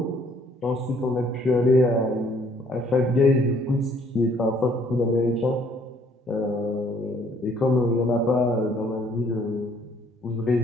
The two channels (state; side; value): normal; both; correlation 0.62